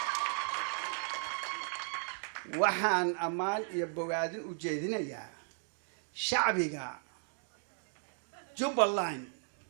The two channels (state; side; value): silent; left; 54 dB below the other